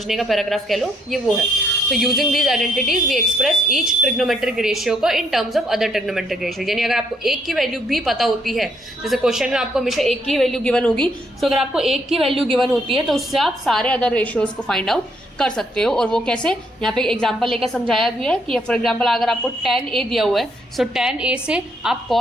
का पैराग्राफ कह लो, ये वो है। तो using these identities we express each trigonometric ratio को in terms of other trigonometric ratio. यानी अगर आपको एक की वैल्यू भी पता होती है, जैसे क्वेश्चन में आपको हमेशा एक की वैल्यू गिवन होगी, तो अगर आपको एक की वैल्यू गिवन होती है तो उससे आप सारे अदर रेशियोज को फाइंड आउट कर सकते हो। और वो कैसे, यहाँ पे एग्जांपल लेकर समझाया भी है कि फॉर एग्जांपल अगर आपको tan a दिया हुआ है, सो tan a से आप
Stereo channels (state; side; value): normal; both; correlation 0.72